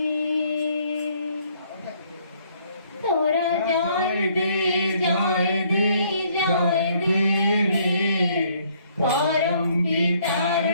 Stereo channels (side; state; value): both; inverted; correlation -0.65